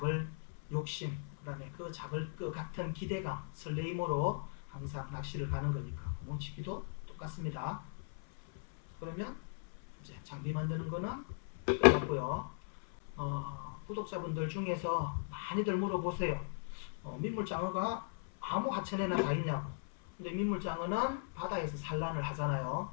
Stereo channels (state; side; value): silent; right; 52 dB below the other